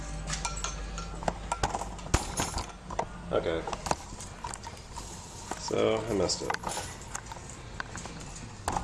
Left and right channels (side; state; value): both; identical; correlation 1.00